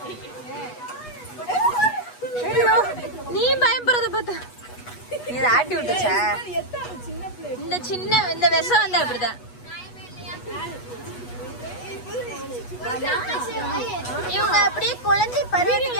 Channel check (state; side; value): late; right; 8.2 ms